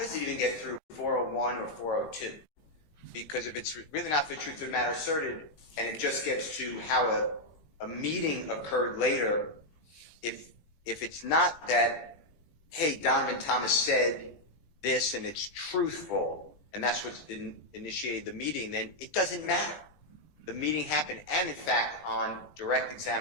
it even get through 401 or 402? Because if it's really not for the truth of the matter asserted, and it just gets to how a meeting occurred later, if it's not that, hey, Donovan Thomas said this and it's truthful, and that's what initiated the meeting, then it doesn't matter. The meeting happened, and in fact, on direct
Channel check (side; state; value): right; late; 20 ms